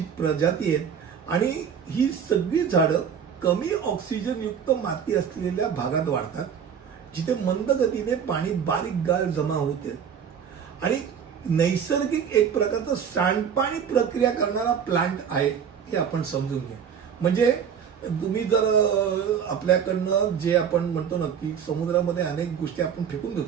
प्रजाती आहेत आणि ही सगळी झाडं कमी ऑक्सिजन युक्त माती असलेल्या भागात वाढतात जिथे मंद गतीने पाणी बारीक गाळ जमा होते आणि नैसर्गिक एक प्रकारचं सांडपाणी प्रक्रिया करणारा प्लांट आहे हे आपण समजून घ्या. म्हणजे तुम्ही जर आपल्याकडनं जे आपण म्हणतो ना की समुद्रामध्ये अनेक गोष्टी आपण फेकून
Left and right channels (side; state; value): left; quieter; 7.7 dB